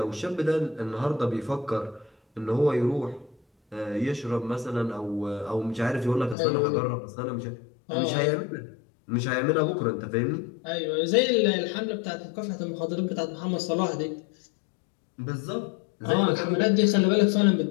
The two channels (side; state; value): right; drops out; at 6.4 s